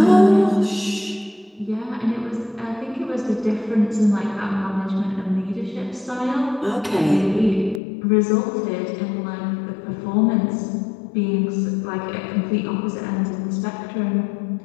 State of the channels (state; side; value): drops out; right; at 7.8 s